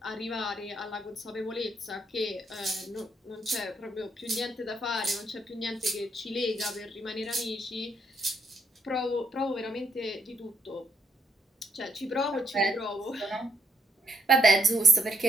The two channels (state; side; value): normal; both; correlation 0.75